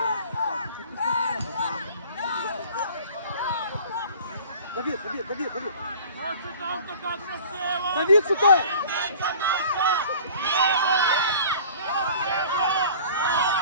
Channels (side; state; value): both; inverted; correlation -0.45